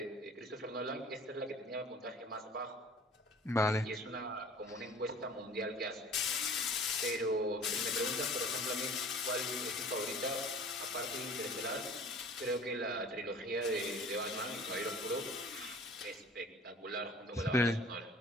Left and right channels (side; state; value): both; normal; correlation 0.47